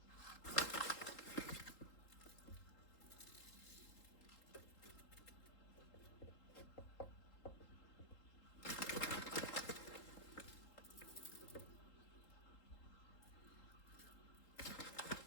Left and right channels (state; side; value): late; right; 3.8 ms